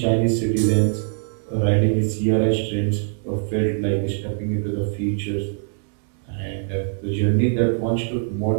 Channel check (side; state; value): left; silent; 64 dB below the other